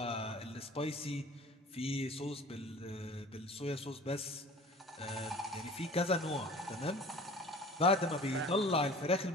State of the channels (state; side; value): normal; both; correlation 0.43